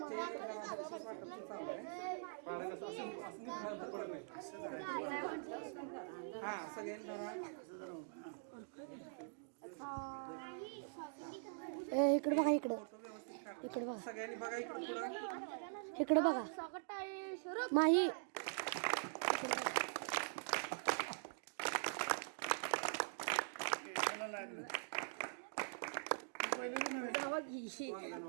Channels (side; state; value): left; silent; digital silence